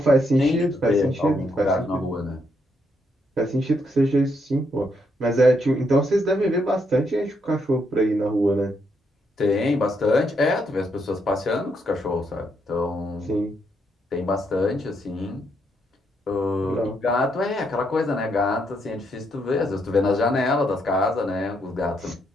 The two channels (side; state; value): both; normal; correlation 0.76